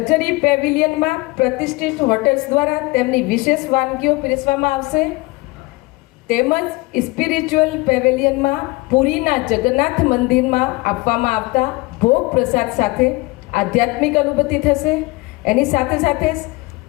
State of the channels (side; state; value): right; quieter; 23.5 dB